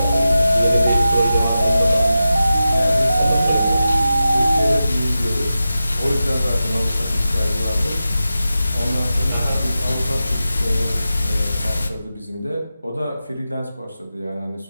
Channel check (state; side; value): inverted; both; correlation -0.92